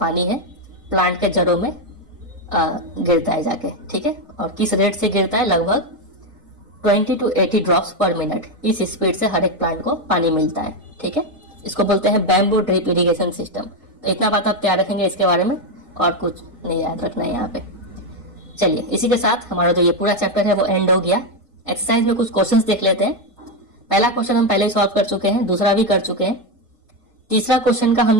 है प्लांट के जड़ों में गिरता है जाके। ठीक है, और किस रेट से गिरता है, लगभग 20 to 80 ड्रॉप्स पर मिनट, इस स्पीड से हर एक प्लांट को पानी मिलता है। ठीक है, इसको बोलते हैं बैम्बू ड्रिप इरिगेशन सिस्टम। तो इतना बात आप तैयार रखेंगे इसके बारे में, और कुछ नहीं याद रखना है यहाँ पे। चलिए, इसी के साथ हमारा जो ये पूरा चैप्टर है वो एंड हो गया। एक्सरसाइज में कुछ क्वेश्चंस देख लेते हैं। पहला क्वेश्चन हम पहले ही सॉल्व कर चुके हैं, दूसरा भी कर चुके हैं। तीसरा क्वेश्चन का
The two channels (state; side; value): normal; both; correlation 0.07